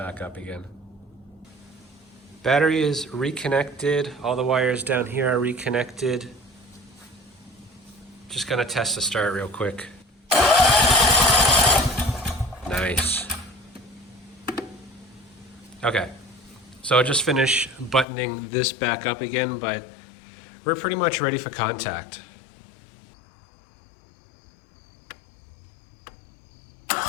up again. Battery is reconnected. All the wires down here are reconnected. Just gonna test the start real quick. Nice. Okay, so I'll just finish buttoning this back up again, but we're pretty much ready for contact.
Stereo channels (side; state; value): right; drops out; at 18.1 s